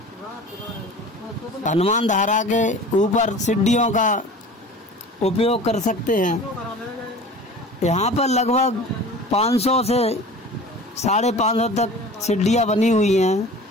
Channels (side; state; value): both; normal; correlation 0.40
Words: हनुमान धारा के ऊपर सीढ़ियों का उपयोग कर सकते हैं। यहाँ पर लगभग 500 से 550 तक सीढ़ियाँ बनी हुई